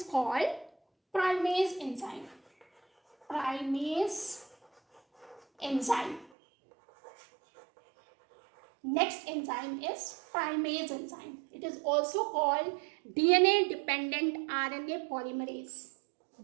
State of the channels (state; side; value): drops out; left; at 6.3 s